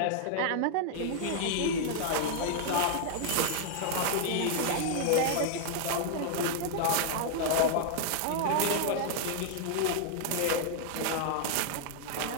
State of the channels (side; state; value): both; different; correlation -0.01